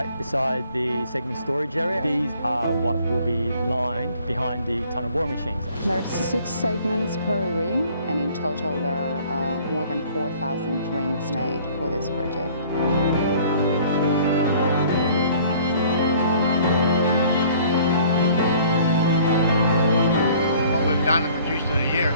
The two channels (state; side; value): inverted; both; correlation -0.54